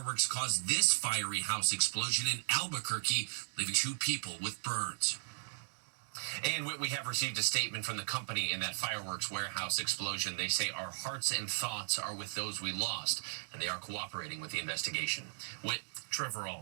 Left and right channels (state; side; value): silent; left; digital silence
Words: caused this fiery house explosion in Albuquerque, leaving 2 people with burns. And we have received a statement from the company in that fireworks warehouse explosion. They say our hearts and thoughts are with those we lost, and they are cooperating with the investigation. Trevor